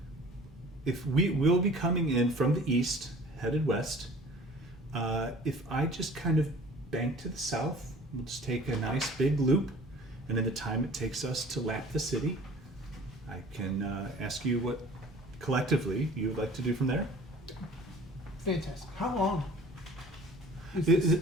If we'll be coming in from the east, headed west, if I just kind of bank to the south, we'll just take a nice big loop, and in the time it takes us to lap the city, I can ask you what collectively you would like to do from there. Fantastic. How long is It, this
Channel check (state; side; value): normal; both; correlation 0.47